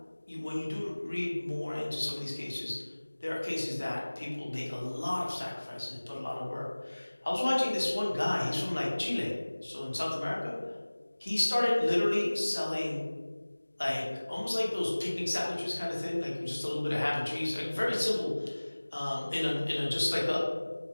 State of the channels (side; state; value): both; inverted; correlation -1.00